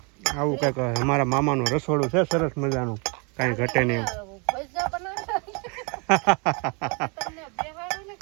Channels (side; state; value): left; quieter; 33.4 dB